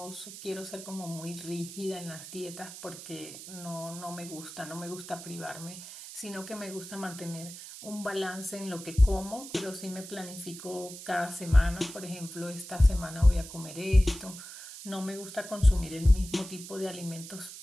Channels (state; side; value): noise; right; hiss, 12 dB below the sound